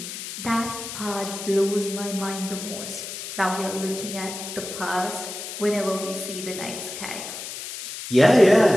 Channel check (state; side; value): noise; left; hiss, 8 dB below the sound